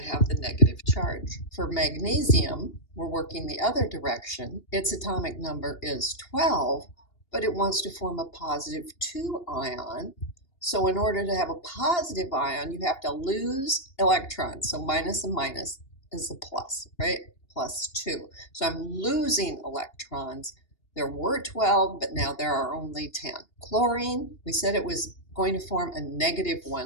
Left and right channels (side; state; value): right; late; 2.8 ms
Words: have the negative charge. For magnesium, we're working the other direction. Its atomic number is 12, but it wants to form a +2 ion. So in order to have a positive ion, you have to lose electrons. So minus and minus is a plus, right? +2. So I'm losing electrons. There were 12, but now there are only 10. Chlorine, we said it was going to form a